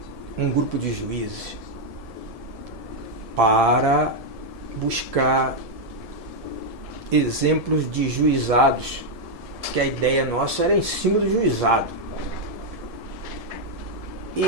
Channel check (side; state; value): left; late; 1.7 ms